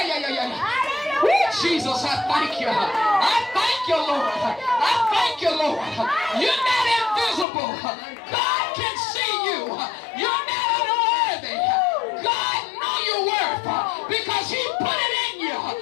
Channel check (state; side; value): drops out; right; at 7.5 s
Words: Woo, Jesus, I thank you. I thank thank you, Lord. I thank you, Lord. You're not invisible. God can see you. You're not unworthy. God knows your worth because he put it in you.